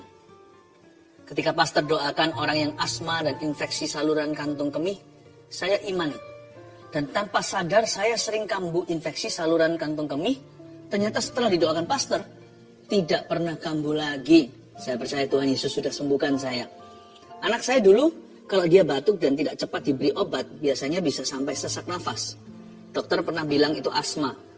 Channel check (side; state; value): both; identical; correlation 1.00